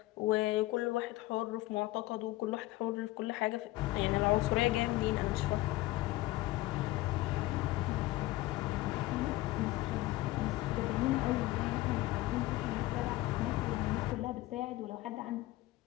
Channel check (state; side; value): quieter; right; 17.9 dB